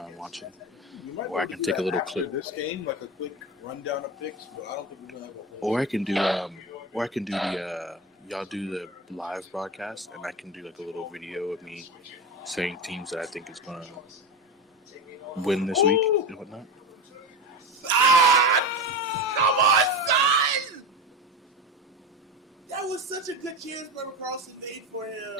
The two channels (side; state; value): both; normal; correlation 0.23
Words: watching. Or I can take a little clip. This game, a quick rundown of picks, but I don't think we're gonna have a whole. Or I can do the y'all do the live broadcast, and I can do a little video of me saying teams that I think is gonna win this week and whatnot. Come on, son! That was such a good chance Brother Carlson made for